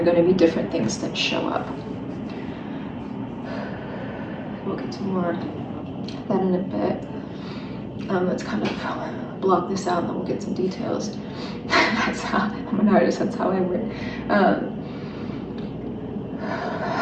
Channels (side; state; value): both; identical; correlation 1.00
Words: going to be different things that show up. We'll get to more of that in a bit. Let's kind of block this out, and then we'll get some details. That's how I'm an artist. That's how I work. God,